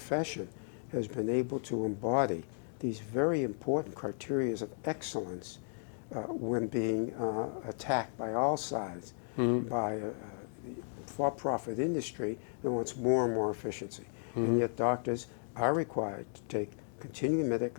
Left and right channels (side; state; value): right; silent; digital silence